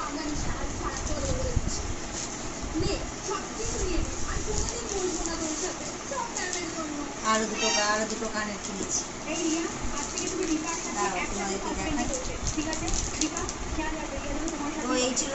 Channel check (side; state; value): both; identical; correlation 1.00